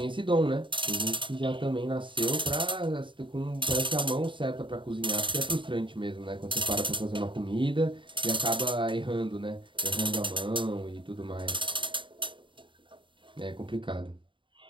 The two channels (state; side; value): late; left; 0.24 ms